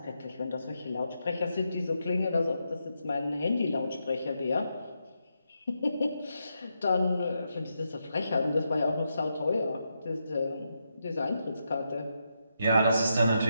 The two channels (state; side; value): inverted; both; correlation -0.84